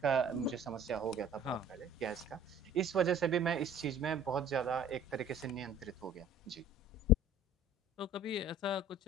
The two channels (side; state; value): both; normal; correlation 0.49